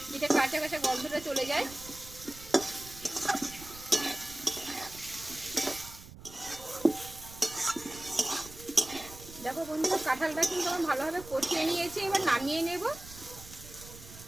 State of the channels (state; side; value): noise; right; rumble, 17 dB below the sound